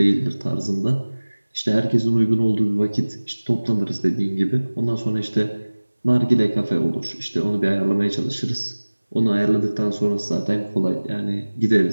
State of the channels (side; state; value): both; inverted; correlation -1.00